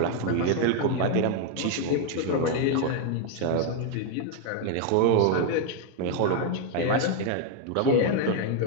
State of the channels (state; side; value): different; both; correlation 0.01